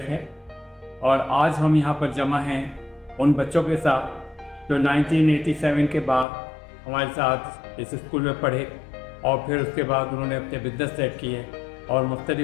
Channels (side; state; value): right; drops out; at 6.2 s